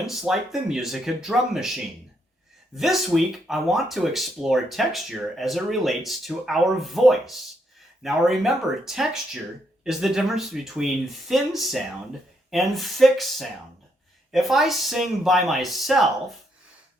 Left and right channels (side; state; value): both; normal; correlation 0.76